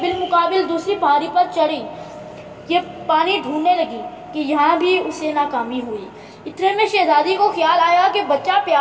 بالمقابل دوسری پہاڑی پر چڑھی، یہ پانی ڈھونڈنے لگی کہ یہاں بھی اسے ناکامی ہوئی۔ اتنے میں شہزادی کو خیال آیا کہ بچہ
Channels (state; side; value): identical; both; correlation 1.00